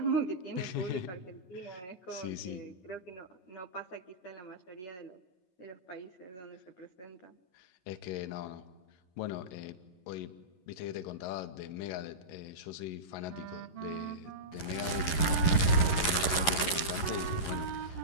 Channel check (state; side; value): late; right; 11 ms